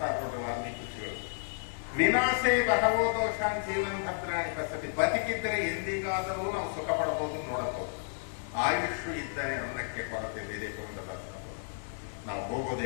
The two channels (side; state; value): right; silent; 56 dB below the other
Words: ನೋಡ್ರಿ ವಾಲ್ಮೀಕಿ ಋಷಿಗಳು. ವಿನಾಶೇ ಬಹವೋ ದೋಷಾನ್ ಜೀವನ್ ಭದ್ರಾಣಿ ಪಸತಿ. ಬದುಕಿದ್ದರೆ ಎಂದಿಗಾದರೂ ನಾವು ಸುಖ ಪಡಬಹುದು, ನೋಡಬಹುದು. ಆಯುಷ್ ಇದ್ದರೆ ಅನ್ನಕ್ಕೆ ಕೊರತೆ ಇದೆ. ನಾವು